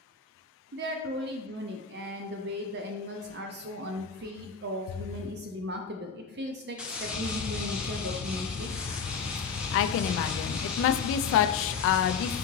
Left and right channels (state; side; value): quieter; right; 5.9 dB